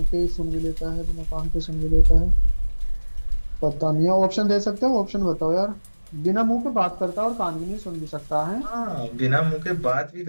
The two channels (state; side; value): inverted; both; correlation -1.00